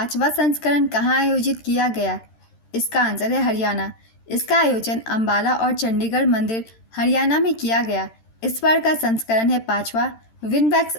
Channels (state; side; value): late; right; 13 ms